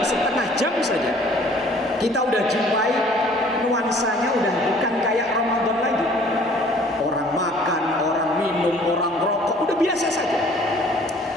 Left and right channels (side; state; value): both; normal; correlation 0.54